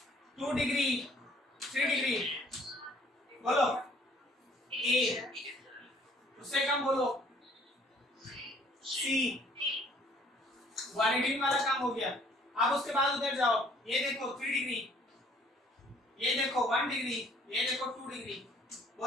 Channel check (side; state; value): both; normal; correlation 0.59